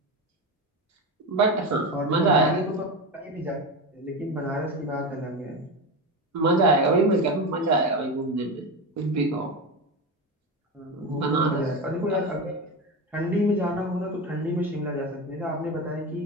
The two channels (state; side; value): normal; both; correlation 0.20